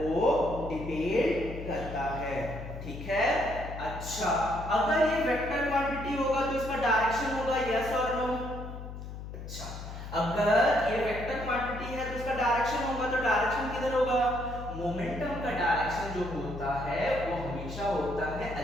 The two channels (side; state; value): left; noise; hum, 10 dB below the sound